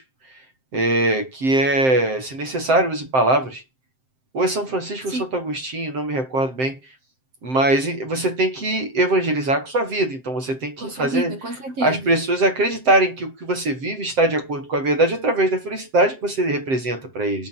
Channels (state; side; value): late; left; 7.7 ms